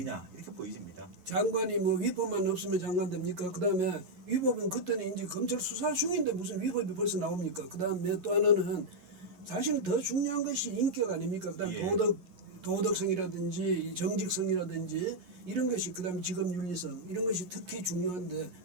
이렇게 보여집니다. 장관이 뭐 위법만 없으면 장관 됩니까? 그 다음에 위법은 그때는 이제 검찰 수사 중인데 무슨 위법이 벌써 나옵니까? 그 다음에 또 하나는 사실은 더 중요한 것이 인격 아닙니까? 그 다음 도덕성이라든지 정직성이라든지 이런 것이 그 다음에 직업윤리성 이런 것이 특히 중요한데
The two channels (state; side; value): late; left; 11 ms